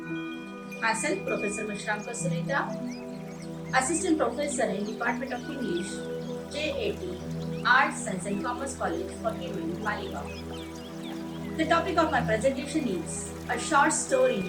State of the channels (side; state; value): both; identical; correlation 1.00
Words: Myself Professor Meshramkar Suntera, Assistant Professor in Department of English, J.A.T, Arts, Science and Commerce College for Women, Malegaon. The topic of my presentation is a short